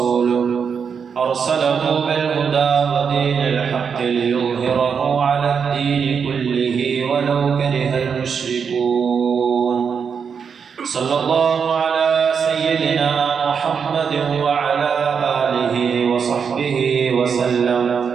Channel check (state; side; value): quieter; left; 6.5 dB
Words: أرسله بالهدى ودين الحق ليظهره على الدين كله ولو كره المشركون صلى الله على سيدنا محمد وعلى آله وصحبه وسلم